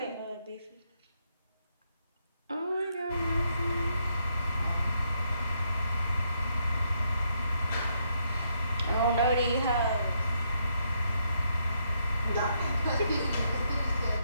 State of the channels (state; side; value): inverted; both; correlation -0.77